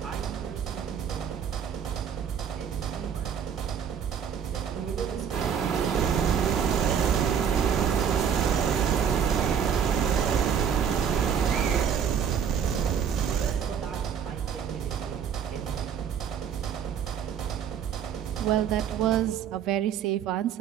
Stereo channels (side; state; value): left; quieter; 7.9 dB